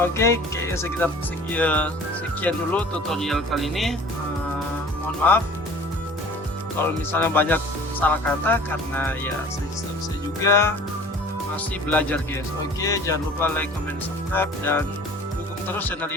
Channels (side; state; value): both; normal; correlation 0.46